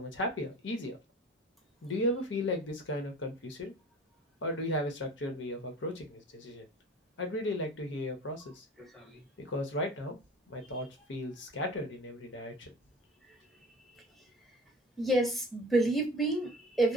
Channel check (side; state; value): both; normal; correlation 0.41